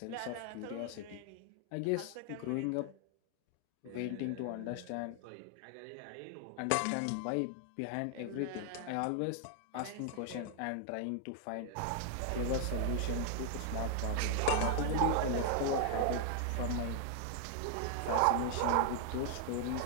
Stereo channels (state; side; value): different; both; correlation 0.00